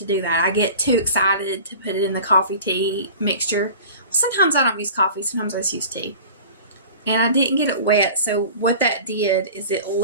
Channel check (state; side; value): inverted; both; correlation -0.40